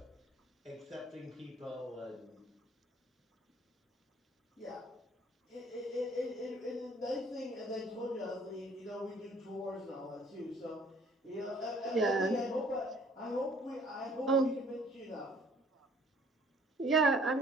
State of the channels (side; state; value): both; normal; correlation 0.58